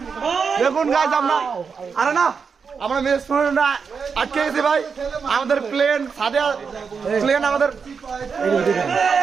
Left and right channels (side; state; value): left; quieter; 5.8 dB